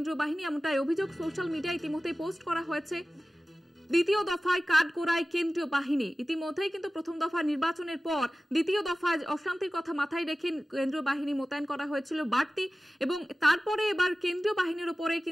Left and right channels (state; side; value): normal; both; correlation 0.96